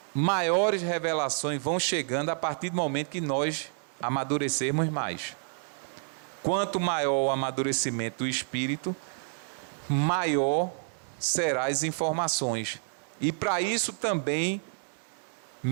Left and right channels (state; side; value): silent; left; digital silence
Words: maiores revelações vão chegando a partir do momento que nós amadurecermos mais. Quanto maior o amadurecimento do espírito, maior serão as informações. E para isso também,